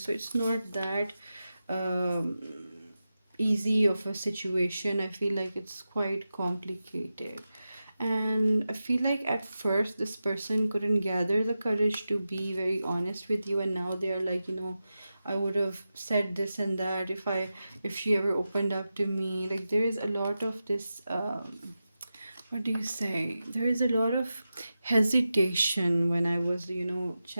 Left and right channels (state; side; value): inverted; both; correlation -0.92